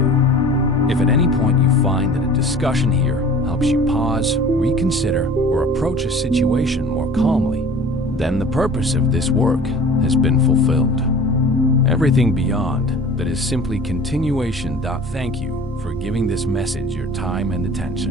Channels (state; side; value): normal; both; correlation 0.43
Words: If at any point you find that a discussion here helps you pause, reconsider, or approach a situation more calmly, then the purpose of this work has been fulfilled. Everything beyond that is simply continuation. Thank you for giving this message your time and